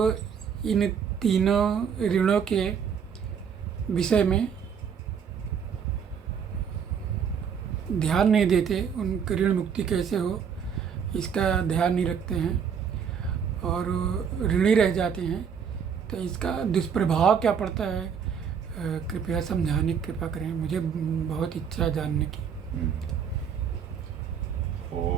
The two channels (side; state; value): left; quieter; 7.2 dB